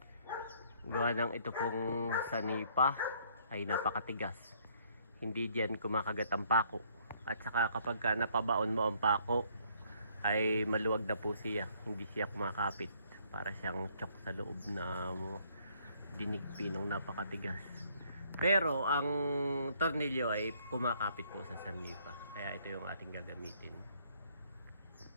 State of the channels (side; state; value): both; inverted; correlation -0.64